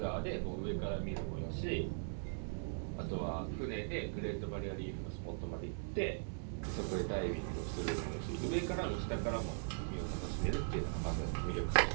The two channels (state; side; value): silent; left; 51 dB below the other